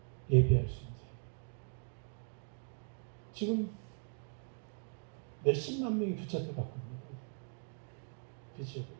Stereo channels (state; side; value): silent; left; 52 dB below the other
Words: 예배할 수 있는 자예요. 지금 몇십만 명이 붙잡혀 갖고 있는 거예요. 그렇죠?